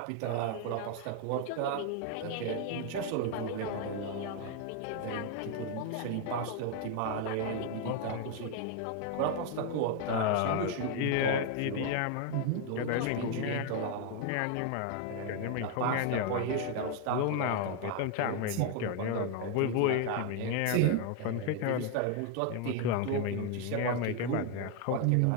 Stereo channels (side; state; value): both; different; correlation 0.01